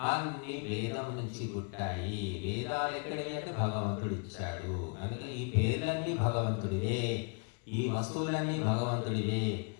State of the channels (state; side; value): quieter; right; 35.8 dB